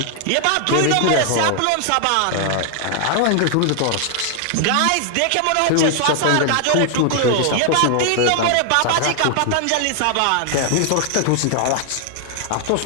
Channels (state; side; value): different; both; correlation 0.00